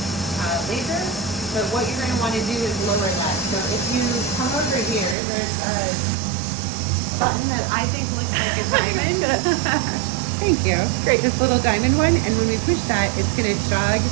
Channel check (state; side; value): drops out; left; at 5.2 s